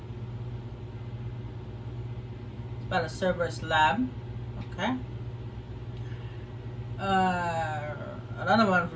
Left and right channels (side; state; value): both; identical; correlation 1.00